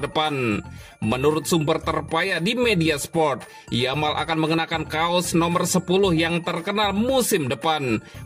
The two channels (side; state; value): both; identical; correlation 1.00